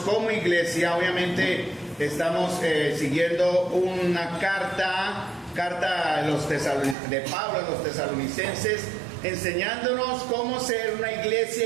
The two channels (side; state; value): left; drops out; at 7.0 s